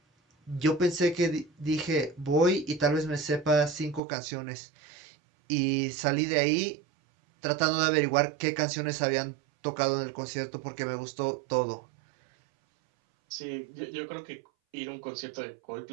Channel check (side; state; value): left; drops out; at 4.0 s